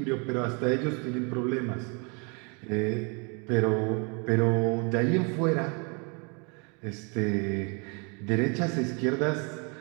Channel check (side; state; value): left; quieter; 33.7 dB